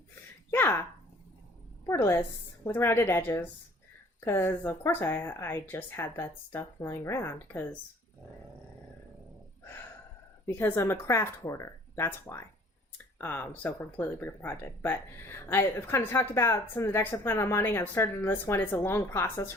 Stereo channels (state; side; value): normal; both; correlation 0.54